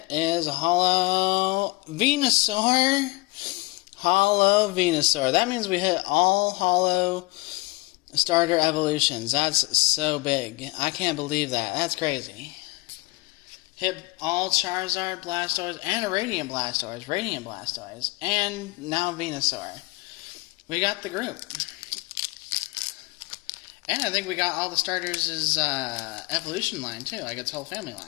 is a holo Venusaur. Holo Venusaur. That means we hit all holo starter evolutions. That's so big. I can't believe that. That's crazy. Hit all Charizard, Blastoise, and a Radiant Blastoise, and now Venusaur. We got the group. And I think we got all the starters' evolution line, too, like its whole family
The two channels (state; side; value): quieter; right; 23.8 dB